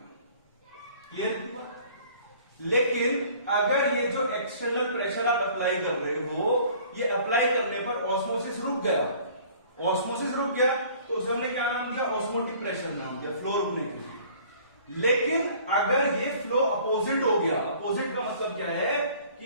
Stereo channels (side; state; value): both; inverted; correlation -0.52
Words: क्लियर हुआ। लेकिन अगर ये जो एक्सटर्नल प्रेशर आप अप्लाई कर रहे हो, ये अप्लाई करने पर ऑस्मोसिस रुक गया, ऑस्मोसिस रुक गया, तो उसे हमने क्या नाम दिया, ऑस्मोटिक प्रेशर नाम दिया, फ्लो रुकने के लिए। लेकिन अगर ये फ्लो अपोजिट हो गया, अपोजिट का मतलब क्या है